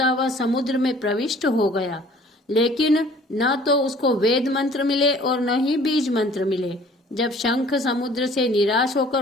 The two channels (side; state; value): both; normal; correlation 0.53